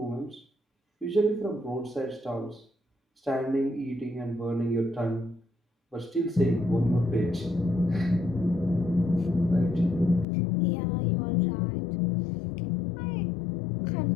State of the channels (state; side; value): drops out; right; at 10.2 s